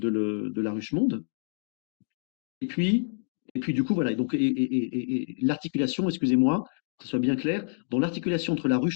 la Ruche Monde. Et puis, et puis du coup, voilà, donc, et l'articulation, excusez-moi, que ce soit bien clair, dans l'articulation entre la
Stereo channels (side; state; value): right; silent; digital silence